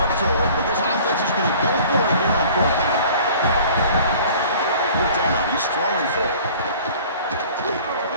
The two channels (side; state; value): both; inverted; correlation -0.48